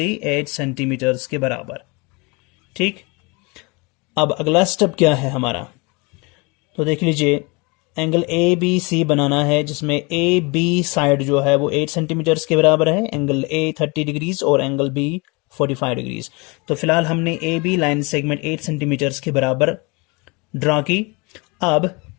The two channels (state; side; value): quieter; right; 28.1 dB